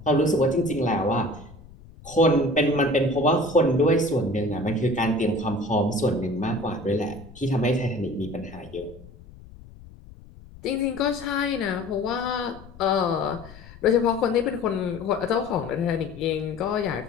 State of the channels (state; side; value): noise; left; rumble, 20 dB below the sound